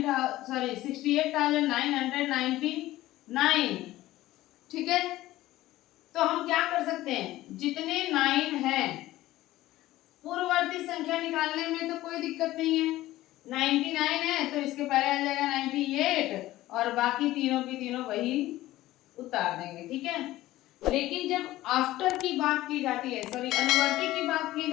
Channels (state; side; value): quieter; right; 16.1 dB